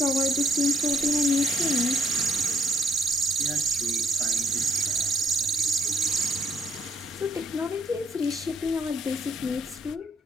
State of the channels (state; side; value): normal; both; correlation 0.71